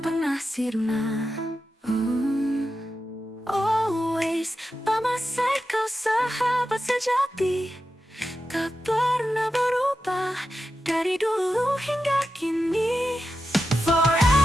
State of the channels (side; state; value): both; normal; correlation 0.90